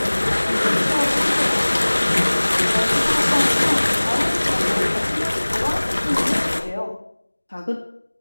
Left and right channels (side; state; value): both; inverted; correlation -1.00